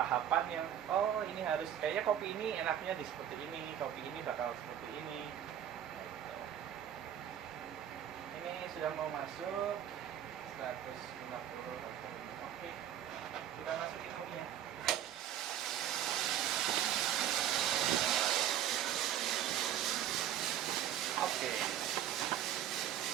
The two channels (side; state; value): left; quieter; 10.6 dB